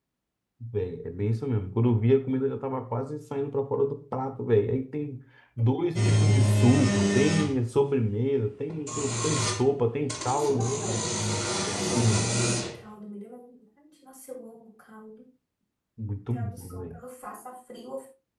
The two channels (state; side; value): identical; both; correlation 1.00